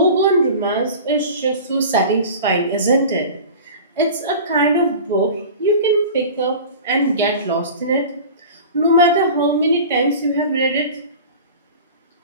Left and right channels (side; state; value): both; inverted; correlation -0.37